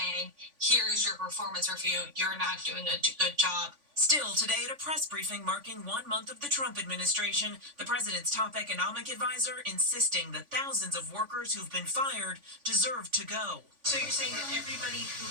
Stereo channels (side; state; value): left; late; 3.5 ms